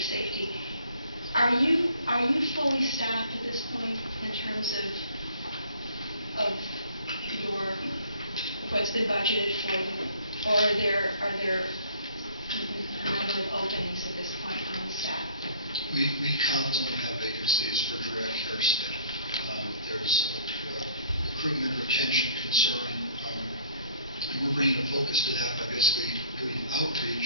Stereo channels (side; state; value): both; inverted; correlation -0.54